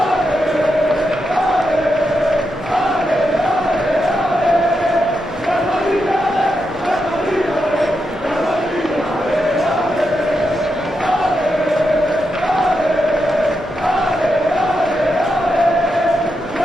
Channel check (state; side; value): normal; both; correlation 0.85